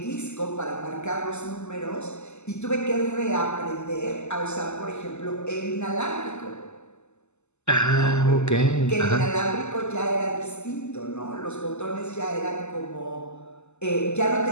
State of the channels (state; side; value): late; right; 0.83 ms